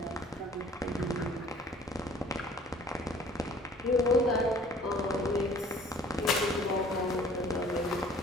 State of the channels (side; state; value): both; normal; correlation 0.52